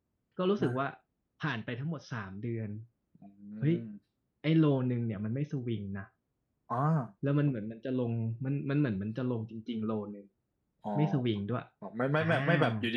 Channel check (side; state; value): both; identical; correlation 1.00